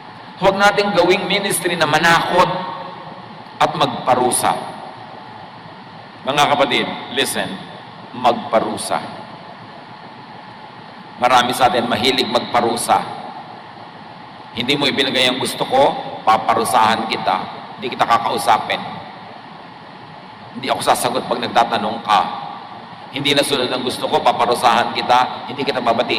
Huwag nating gawing ministry na manakot at magparusa. Mga kapatid, listen, magparusa. Marami sa atin mahilig magparusa. Hindi mo ibinigay ang gusto ko, paparusahan kita. Hindi kita kakausapin. Hindi ako sasagot pag nagtatanong ka. Hindi nasunod ang gusto ko, paparusahan kita. Hindi kita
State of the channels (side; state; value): both; identical; correlation 1.00